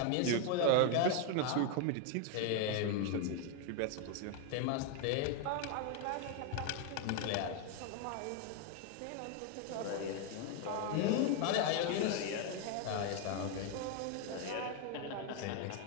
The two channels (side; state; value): both; different; correlation 0.01